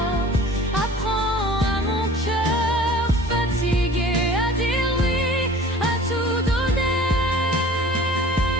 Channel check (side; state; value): both; normal; correlation 0.45